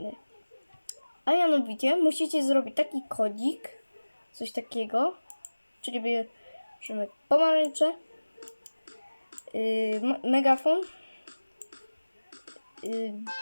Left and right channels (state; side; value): inverted; both; correlation -1.00